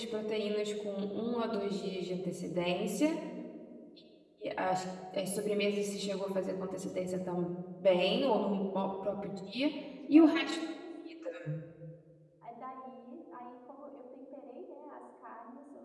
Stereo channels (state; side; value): identical; both; correlation 1.00